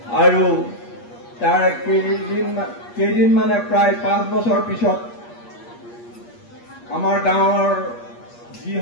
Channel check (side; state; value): right; late; 8.5 ms